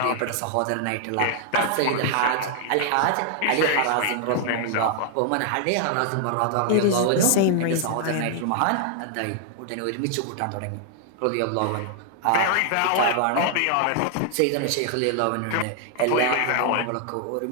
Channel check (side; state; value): both; different; correlation 0.00